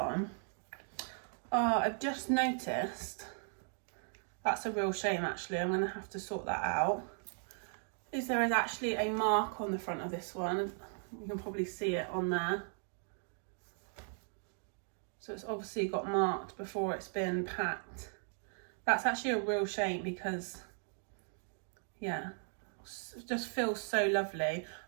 I've just noticed, that's a real shame actually, I'm going to have to sort that out. There is actually a mark on the front of this one, you can probably see it on there. So it's obviously got marked before it's been packed. That's actually a real shame because, yeah, it just feels so lovely.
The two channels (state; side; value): silent; left; 53 dB below the other